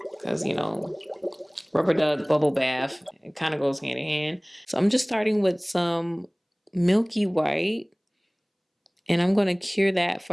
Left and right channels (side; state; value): both; identical; correlation 1.00